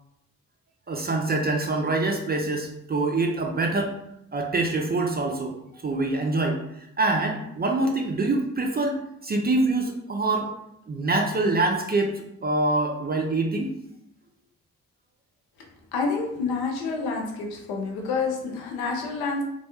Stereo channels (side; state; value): both; normal; correlation 0.30